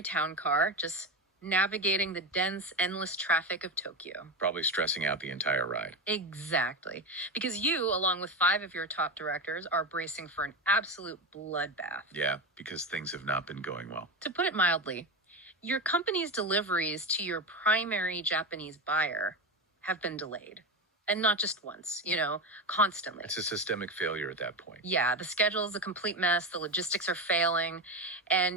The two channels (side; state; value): both; normal; correlation 0.18